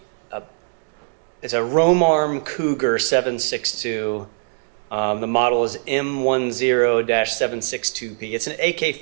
It's a Romarm Cougar 7.62. The model is M10-762P. It's an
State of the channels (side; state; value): left; silent; digital silence